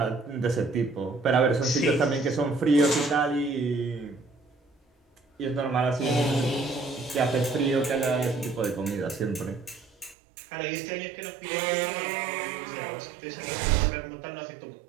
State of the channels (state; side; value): drops out; left; at 10.2 s